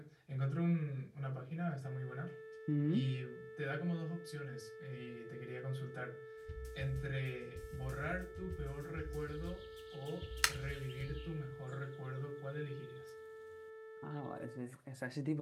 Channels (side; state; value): both; identical; correlation 1.00